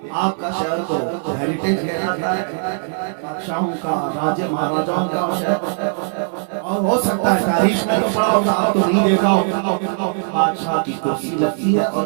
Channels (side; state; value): left; silent; digital silence